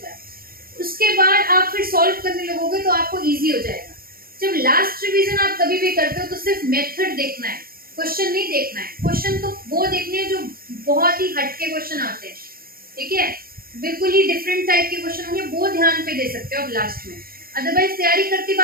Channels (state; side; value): late; left; 0.43 ms